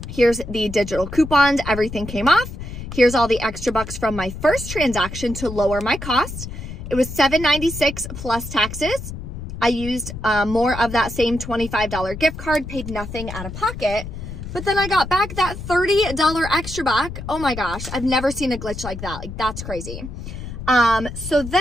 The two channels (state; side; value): noise; left; rumble, 9 dB below the sound